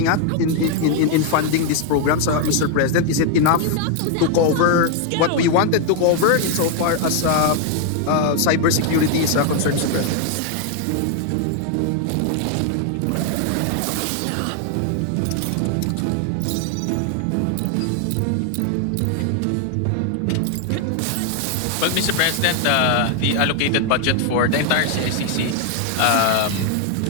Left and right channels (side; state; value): both; different; correlation 0.00